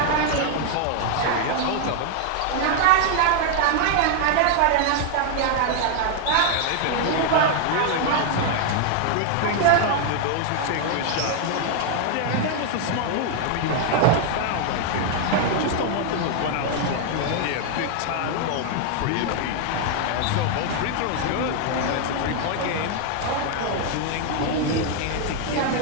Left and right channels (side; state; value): both; different; correlation 0.00